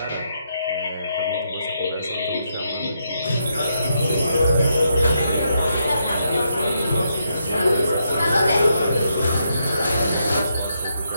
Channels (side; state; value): both; inverted; correlation -0.79